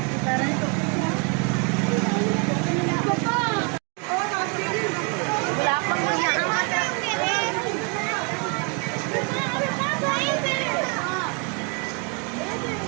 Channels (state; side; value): quieter; left; 35.1 dB